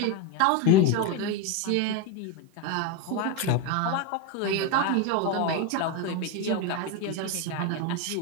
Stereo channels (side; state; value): both; different; correlation 0.03